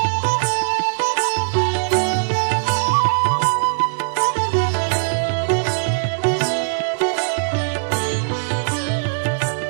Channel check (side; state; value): left; silent; digital silence